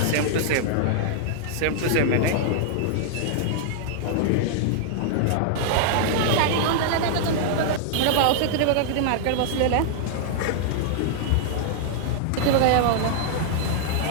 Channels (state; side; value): different; both; correlation -0.01